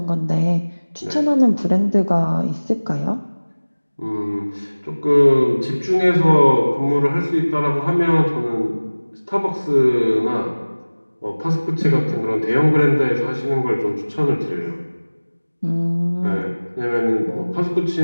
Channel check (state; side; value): inverted; both; correlation -1.00